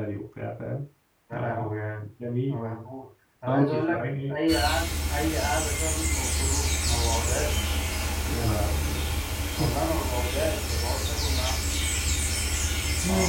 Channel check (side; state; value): both; identical; correlation 1.00